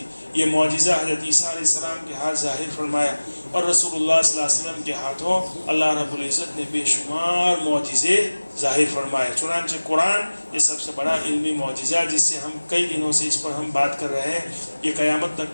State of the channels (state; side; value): inverted; both; correlation -1.00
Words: یہ معجزہ حضرت عیسیٰ علیہ السلام کے ہاتھ ظاہر فرمایا، اور رسول اللہ صلی اللہ علیہ وسلم کے ہاتھوں اللہ رب العزت نے بے شمار معجزے ظاہر فرمائے۔ چنانچہ قرآن یہ سب سے بڑا علمی معجزہ، جس سے ہم کئی دنوں سے اس پر ہم بات کر رہے ہیں، یہ قیامت تک